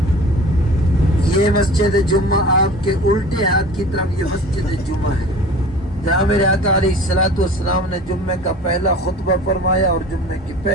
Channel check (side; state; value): both; normal; correlation 0.41